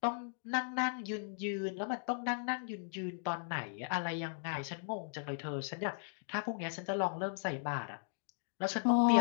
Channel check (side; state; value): right; silent; digital silence